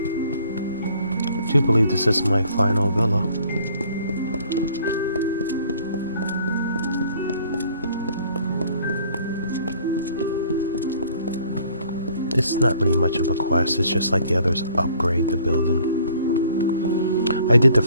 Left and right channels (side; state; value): both; inverted; correlation -0.57